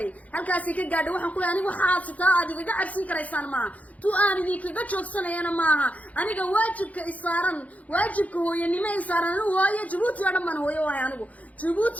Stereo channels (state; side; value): late; right; 0.070 ms